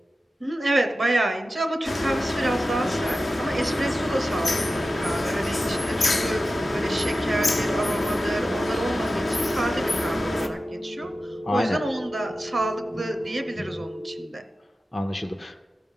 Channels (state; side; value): normal; both; correlation 0.94